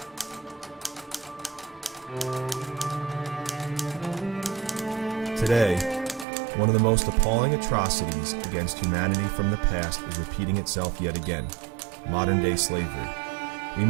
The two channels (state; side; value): drops out; left; at 6.2 s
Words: Today, one of the most appalling atrocities against humanity from the past is repeating itself yet again: modern-day slavery. We